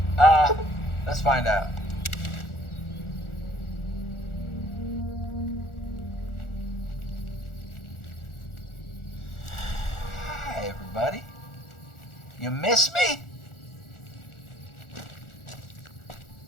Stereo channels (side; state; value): right; late; 1.4 ms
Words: Let's find out. Hi, everybody. You miss me?